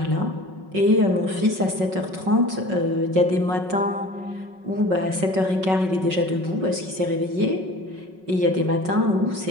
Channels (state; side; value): late; left; 5.4 ms